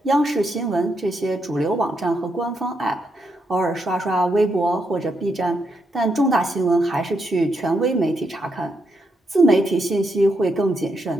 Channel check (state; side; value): normal; both; correlation 0.80